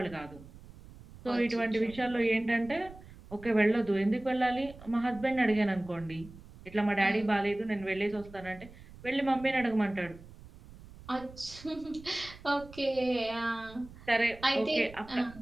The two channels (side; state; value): right; noise; rumble, 19 dB below the sound